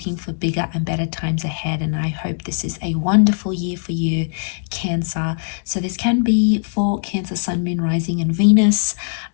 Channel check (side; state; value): right; silent; digital silence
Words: for bigger and better times ahead, and I hope this is a wonderful year for you, Cancer. So this can be for Cancer, Sun, Moon, Rising and Venus.